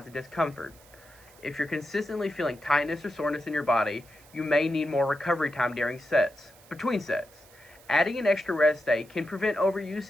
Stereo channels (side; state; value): right; noise; hiss, 25 dB below the sound